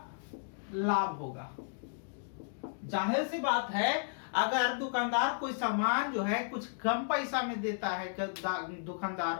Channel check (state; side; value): silent; right; digital silence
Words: लाभ होगा। जाहिर सी बात है, अगर दुकानदार कोई सामान जो है कुछ कम पैसा में देता है,